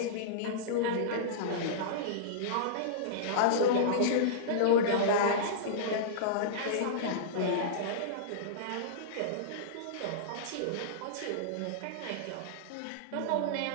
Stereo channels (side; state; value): both; different; correlation -0.03